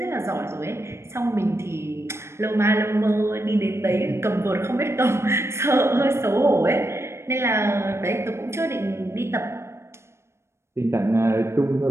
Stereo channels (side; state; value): left; late; 0.13 ms